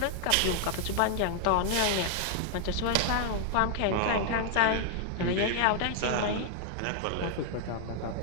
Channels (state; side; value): different; both; correlation -0.01